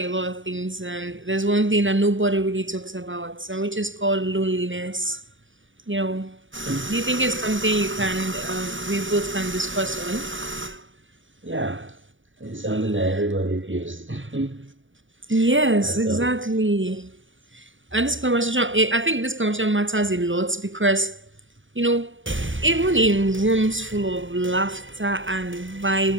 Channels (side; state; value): left; late; 0.56 ms